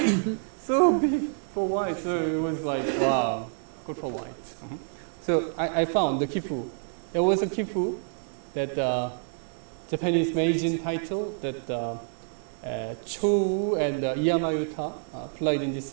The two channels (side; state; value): left; silent; digital silence